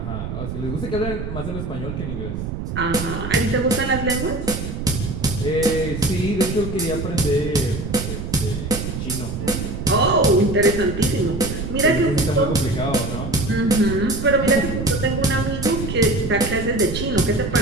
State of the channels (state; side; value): noise; right; rumble, 5 dB below the sound